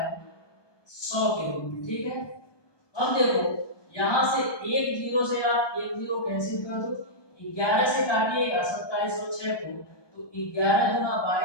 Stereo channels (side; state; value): right; late; 1.2 ms